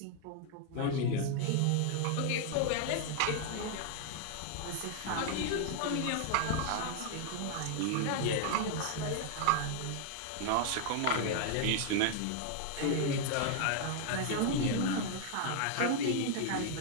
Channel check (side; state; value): both; different; correlation 0.00